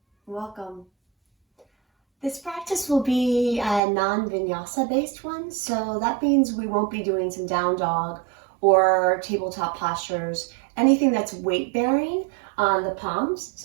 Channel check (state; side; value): drops out; left; at 3.8 s